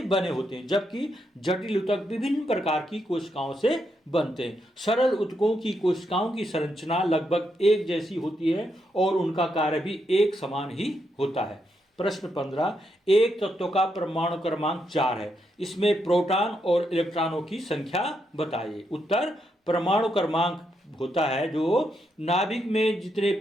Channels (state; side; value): normal; both; correlation 0.80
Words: बने होते हैं, जबकि जटिल ऊतक विभिन्न प्रकार की कोशिकाओं से बनते हैं। सरल ऊतकों की कोशिकाओं की संरचना लगभग एक जैसी होती है और उनका कार्य भी एक समान ही होता है। प्रश्न 15, एक तत्व का परमाणु क्रमांक 4 है, इसमें प्रोटॉन और इलेक्ट्रॉनों की संख्या बताइए। उत्तर, परमाणु क्रमांक होता है जो नाभिक में जितने